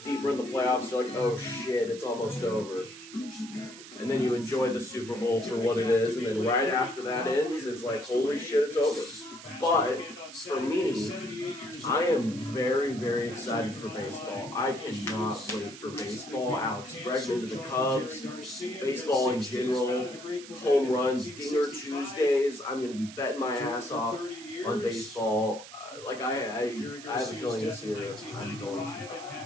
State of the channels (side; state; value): right; noise; hiss, 15 dB below the sound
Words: deeper in the playoffs, you're like, oh shit, it's almost over. And then you enjoy the Super Bowl for what it is. And then right after that ends, it's like, holy shit, it's over. But for me, I am very, very excited for baseball. I cannot wait for baseball. Alex Bregman to the Cubs, baseball in general, home runs, Dinger Tuesdays. I'm going to be betting my ass off on baseball. I have a feeling this year I'm going to.